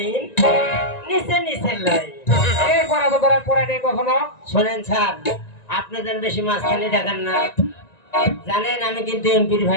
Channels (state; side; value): late; right; 1.9 ms